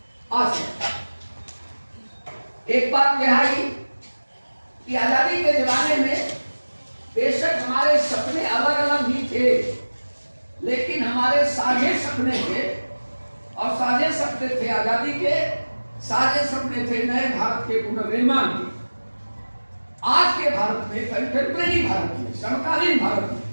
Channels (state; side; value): inverted; both; correlation -1.00